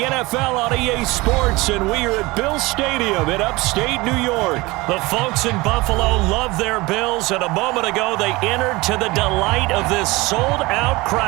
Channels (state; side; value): quieter; left; 22.2 dB